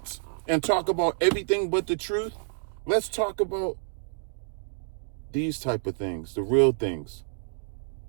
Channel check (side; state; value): left; silent; digital silence